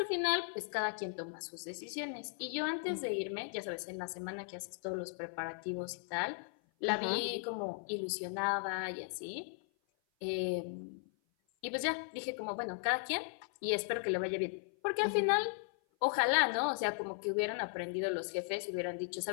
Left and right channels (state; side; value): silent; right; 53 dB below the other